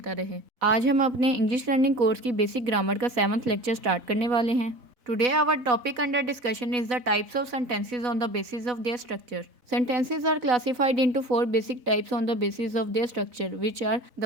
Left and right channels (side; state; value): left; late; 4.1 ms